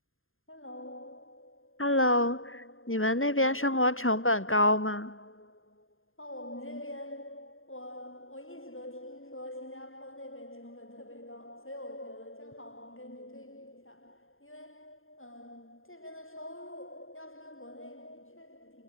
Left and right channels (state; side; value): late; right; 0.60 ms